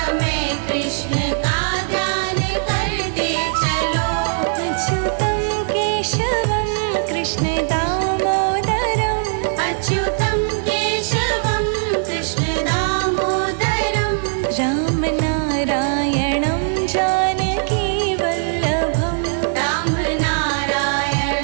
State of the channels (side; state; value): left; silent; digital silence